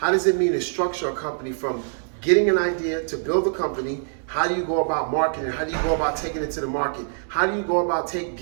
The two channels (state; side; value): silent; left; digital silence